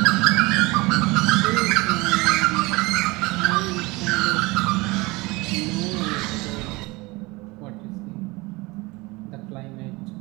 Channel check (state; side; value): quieter; left; 23.5 dB